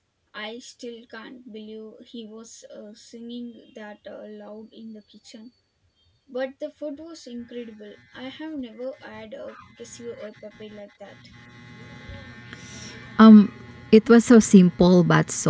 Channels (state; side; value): identical; both; correlation 1.00